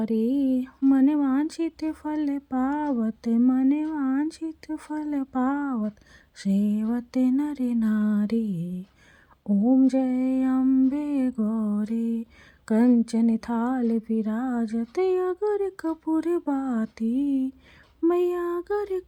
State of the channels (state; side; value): identical; both; correlation 1.00